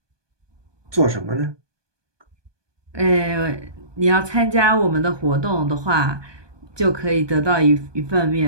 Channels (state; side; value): late; left; 1.2 ms